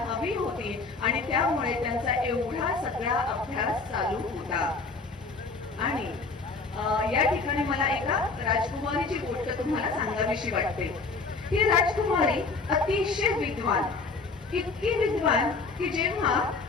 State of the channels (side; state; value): right; quieter; 4.1 dB